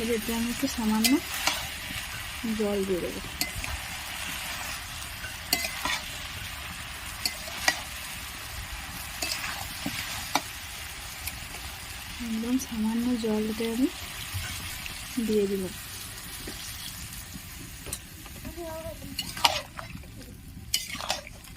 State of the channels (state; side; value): identical; both; correlation 1.00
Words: এতে আমি একটু সামান্য জল দিয়ে দেবো। একদম সামান্য জলটা আমি দিয়ে দিলাম।